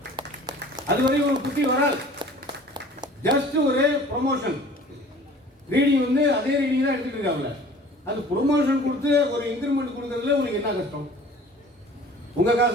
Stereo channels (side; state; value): both; normal; correlation 0.47